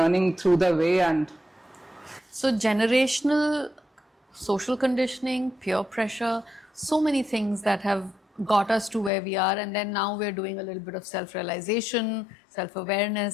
through the way and So generational social conditioning, peer pressure, so many things that have got us to where we are, and then now we're doing a little bit of self-realization,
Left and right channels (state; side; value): drops out; right; at 9.1 s